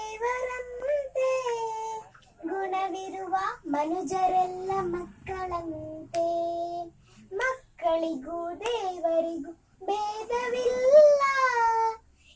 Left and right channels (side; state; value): both; identical; correlation 1.00